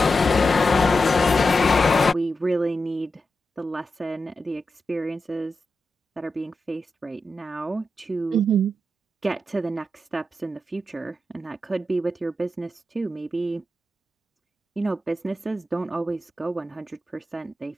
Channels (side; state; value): both; normal; correlation 0.89